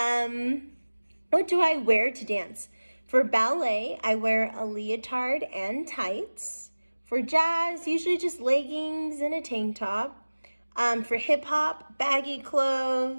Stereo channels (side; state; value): both; inverted; correlation -1.00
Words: What do I wear to dance? For ballet, I wear a leotard and tights. For jazz, usually just leggings and a tank top. For hip hop, baggy